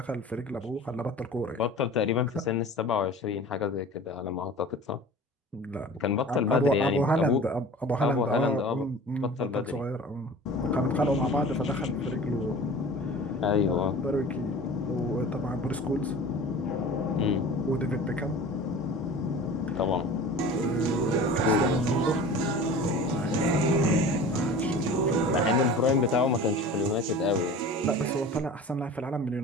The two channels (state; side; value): normal; both; correlation 0.39